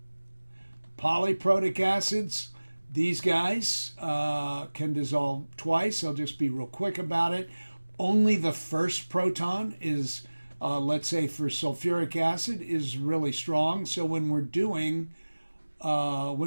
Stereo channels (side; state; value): both; inverted; correlation -1.00